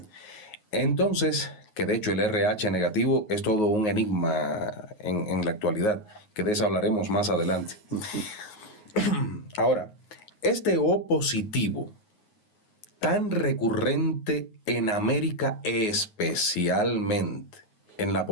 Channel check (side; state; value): right; late; 9.5 ms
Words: Entonces, que de hecho el RH negativo es todo un enigma en la actualidad, que de eso hablaremos más adelante. Ahora, este O positivo, tan recurrente en América, especialmente en la